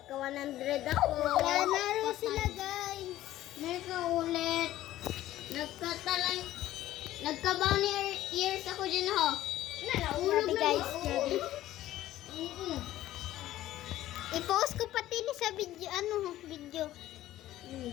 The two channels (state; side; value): quieter; right; 14.3 dB